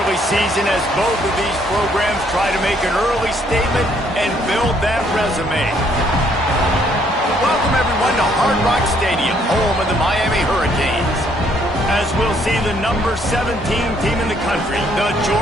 season as both of these programs try to make an early statement and build that resume. Welcome, everyone, to Hard Rock Stadium, home of the Miami Hurricanes. As we'll see the number 17 team in the country, the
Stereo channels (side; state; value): both; normal; correlation 0.67